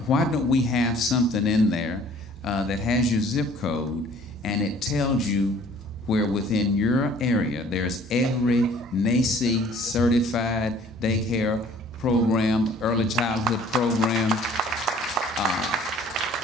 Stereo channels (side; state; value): both; normal; correlation 0.54